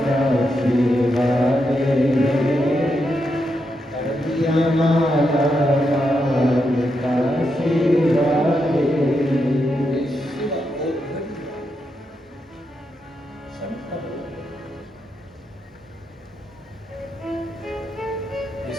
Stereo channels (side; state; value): both; normal; correlation 0.83